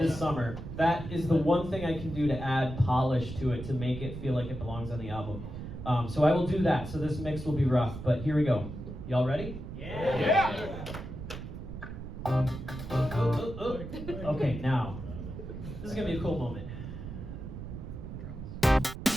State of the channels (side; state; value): right; noise; rumble, 9 dB below the sound